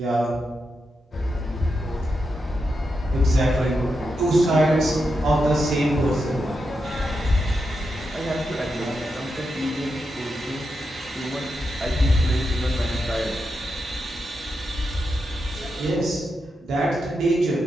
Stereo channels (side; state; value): both; normal; correlation 0.86